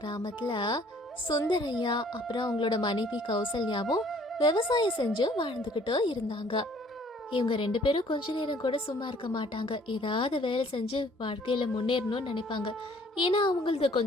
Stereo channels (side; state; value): both; normal; correlation 0.58